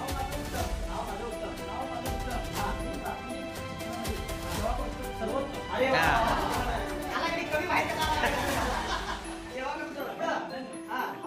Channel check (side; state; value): both; identical; correlation 1.00